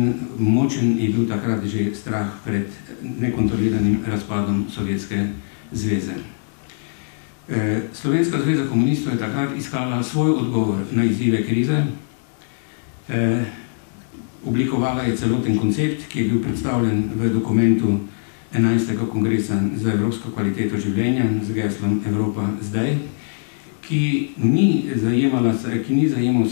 močen je bil takrat že strah pred nekontroliranim razpadom Sovjetske zveze. Slovenska zveza komunistov je takrat iskala svoj odgovor na izzive krize. Oblikovala je celoten koncept, ki je bil predstavljen v dokumentu 11. kongresa za evropsko kvaliteto življenja z geslom Evropa zdaj, ki ni zajemal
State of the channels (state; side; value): silent; right; digital silence